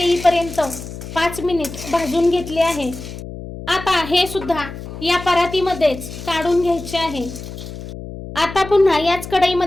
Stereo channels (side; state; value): left; noise; hum, 11 dB below the sound